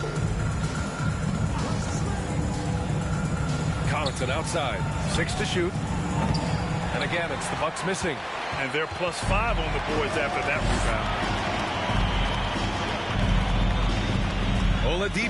Connaughton outside. 6 to shoot. And again, it's the Bucks missing. And they're +5 on the boards after that rebound.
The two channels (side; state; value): both; identical; correlation 1.00